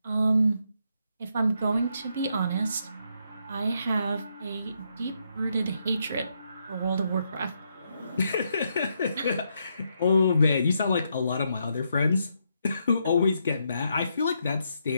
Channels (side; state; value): both; inverted; correlation -0.78